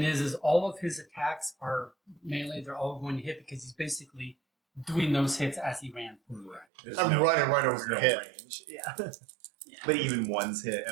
is all of his attacks are melee. They're all going to hit because he's basically doing those hits as he ran. Right. I'm running right over your head. range. Yeah. But even one's hit,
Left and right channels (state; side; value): drops out; left; at 6.7 s